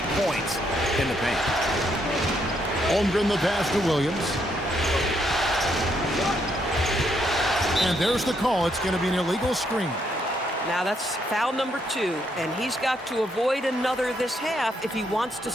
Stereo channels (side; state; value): both; normal; correlation 0.75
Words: points in the paint. Holmgren the pass to Williams. And there's the call. It's going to be an illegal screen. Now that's foul number 2, and he's got to avoid another this half if he wants to